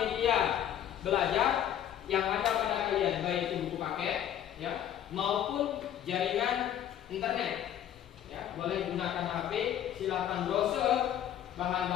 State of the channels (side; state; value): right; quieter; 10.7 dB